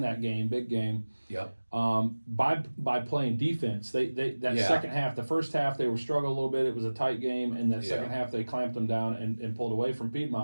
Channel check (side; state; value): both; inverted; correlation -1.00